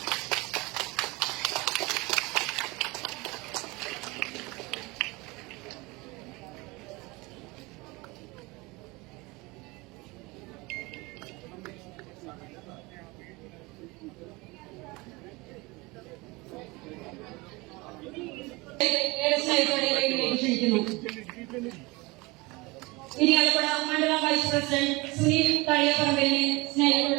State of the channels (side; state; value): left; quieter; 24.0 dB